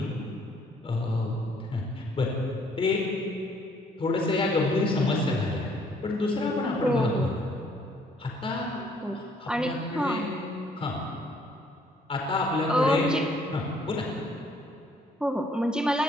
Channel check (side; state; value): both; normal; correlation 0.63